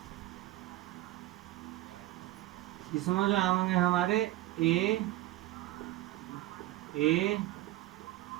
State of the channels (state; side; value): quieter; left; 16.3 dB